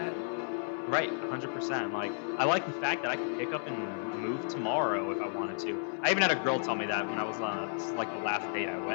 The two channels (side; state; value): right; silent; 56 dB below the other